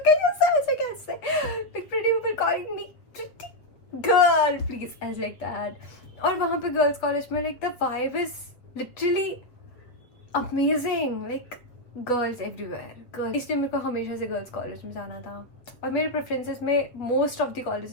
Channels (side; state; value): right; late; 8.0 ms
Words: at yourself. ऐसे कैसे like pretty people calling me pretty girl please, as like that. और वहाँ पे girls college में like the vibe is literally amazing, like girls everywhere, girls. इसलिए मेरे को हमेशा से गर्ल्स कॉलेज में जाना था और मेरे प्रेफरेंसेस में most of the